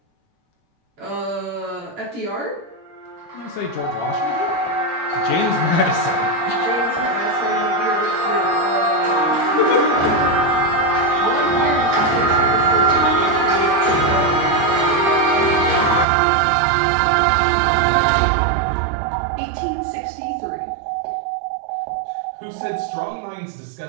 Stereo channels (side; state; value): left; drops out; at 16.1 s